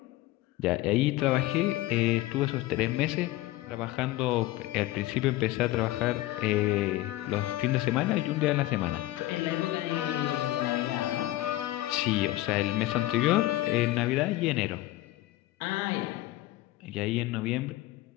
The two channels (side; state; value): right; quieter; 16.7 dB